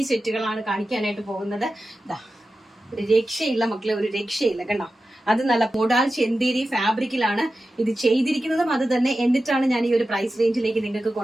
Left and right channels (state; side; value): normal; both; correlation 0.93